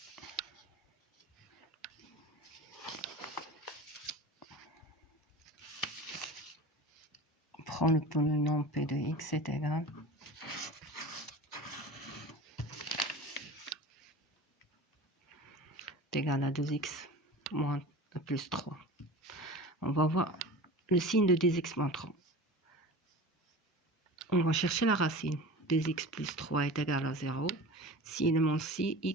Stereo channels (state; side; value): normal; both; correlation 0.35